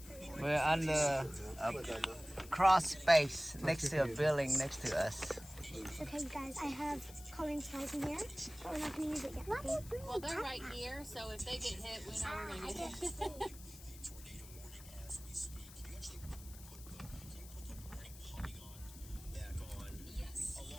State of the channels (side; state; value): left; noise; hiss, 17 dB below the sound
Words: We're under a cross space next to a building next to us. Okay, you guys, I have coloring supplies in here, but we're not going to use it yet. Okay? Well, they're right here, so if they get hit, we know we're gonna get hit.